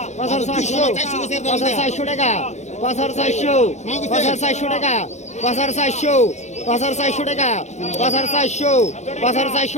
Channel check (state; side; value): late; right; 0.33 ms